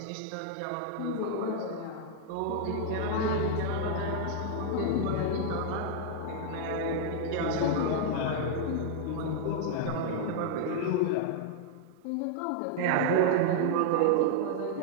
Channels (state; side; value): different; both; correlation -0.01